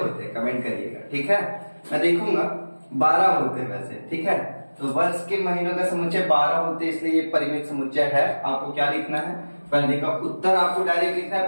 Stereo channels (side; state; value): both; inverted; correlation -1.00